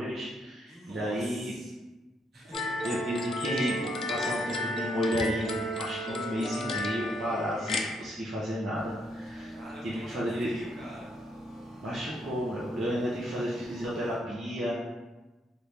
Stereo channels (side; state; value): both; normal; correlation 0.73